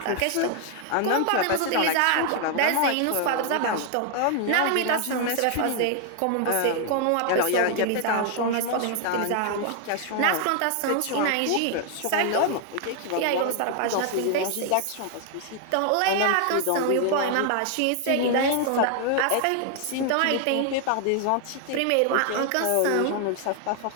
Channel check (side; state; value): both; different; correlation 0.00